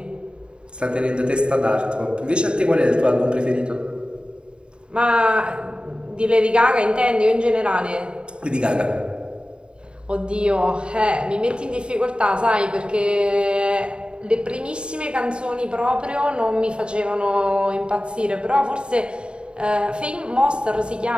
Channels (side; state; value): left; late; 0.052 ms